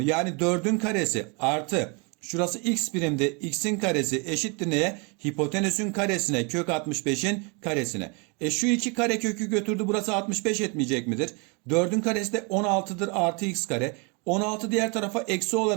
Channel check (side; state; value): left; quieter; 32.5 dB